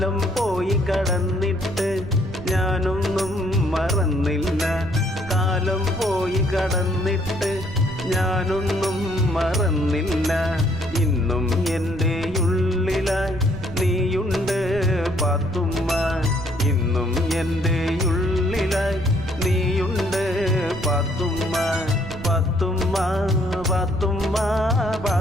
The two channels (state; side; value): noise; right; rumble, 12 dB below the sound